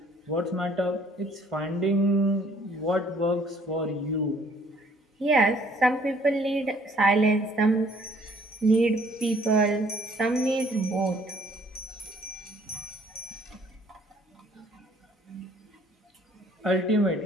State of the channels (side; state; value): both; normal; correlation 0.60